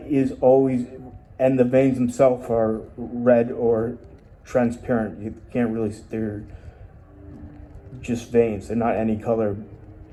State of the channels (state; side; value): identical; both; correlation 1.00